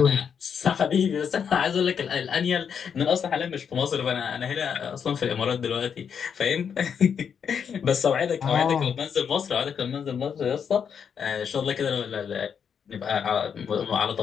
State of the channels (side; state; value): right; quieter; 7.2 dB